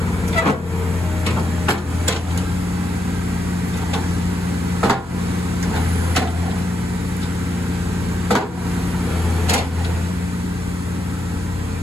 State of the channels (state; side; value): normal; both; correlation 0.82